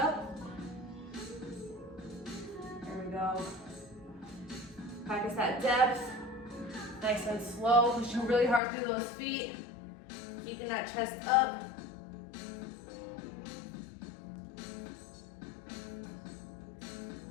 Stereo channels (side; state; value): right; drops out; at 8.6 s